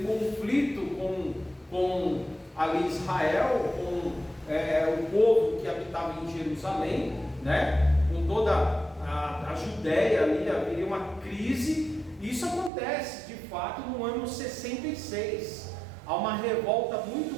conflito com ali Israel, com o povo que habitava em Jerusalém, né, com toda a Judéia ali, haveria uma crise, Isso acontece, de fato, no ano 66. Há uma revolta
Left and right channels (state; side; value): drops out; left; at 12.7 s